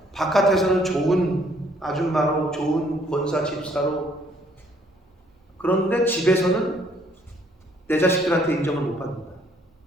바깥에서는 좋은 아줌마로 좋은 권사 집사로, 그런데 집에서는 내 자식들한테 인정을 못 받는다.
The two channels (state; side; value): normal; both; correlation 0.64